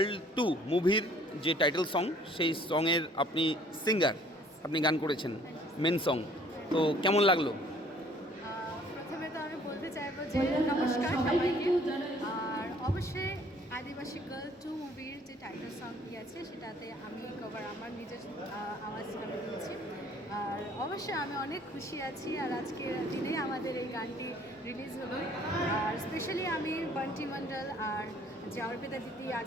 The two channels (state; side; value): normal; both; correlation 0.57